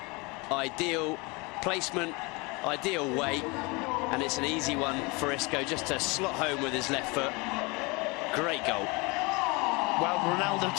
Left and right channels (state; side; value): quieter; right; 27.0 dB